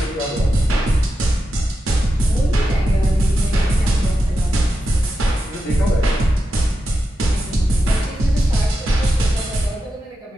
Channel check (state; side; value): normal; both; correlation 0.89